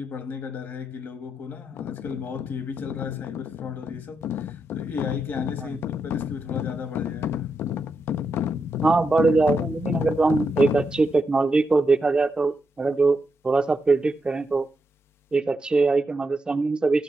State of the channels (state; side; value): normal; both; correlation 0.84